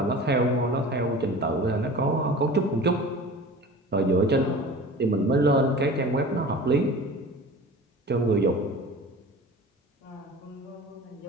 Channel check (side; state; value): both; normal; correlation 0.39